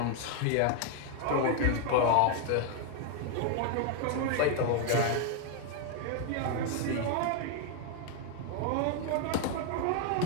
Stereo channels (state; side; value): different; both; correlation 0.01